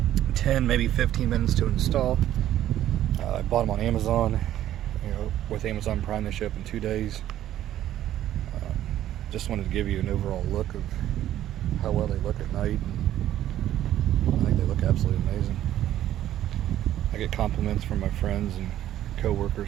10, maybe 15 minutes to install. I bought them on Amazon. With Amazon Prime, they ship in 2 days. Just wanted to give you an overall look of how well they look at night. I think they look absolutely amazing. I get compliments from my friends and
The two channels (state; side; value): quieter; left; 12.4 dB